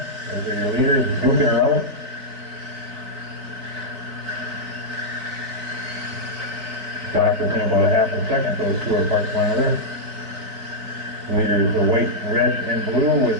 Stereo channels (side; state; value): left; late; 4.1 ms